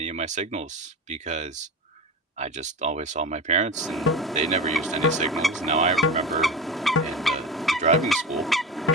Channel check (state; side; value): normal; both; correlation 0.28